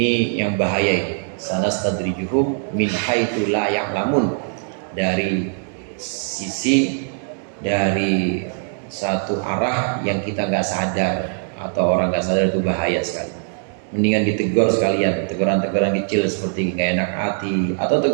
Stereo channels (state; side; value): silent; left; 59 dB below the other